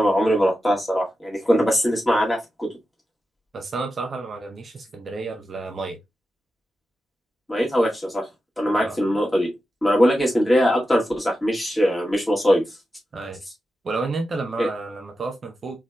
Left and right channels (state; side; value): normal; both; correlation 0.91